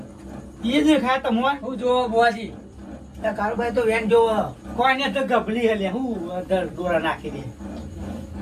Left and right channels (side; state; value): both; identical; correlation 1.00